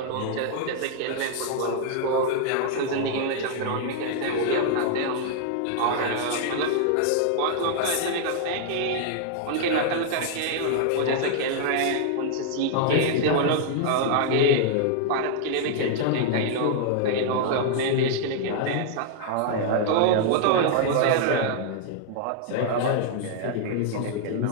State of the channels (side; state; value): both; different; correlation -0.01